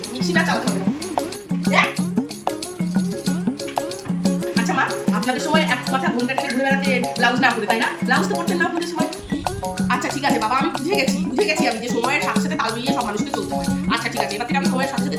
মিক্সিটা চালাতে হবে না। হ্যাঁ? আচ্ছা মা, আপনাদের সময় এক কথা ঘুমটা টেনে ঘুরে বেড়াতে ব্লাউজ না করে, তাই না? ব্লাউজ তো করতেন না আপনাদের সময়। আচ্ছা ঠিক আছে বাবা, আমি বুঝে গেছি।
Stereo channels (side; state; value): both; identical; correlation 1.00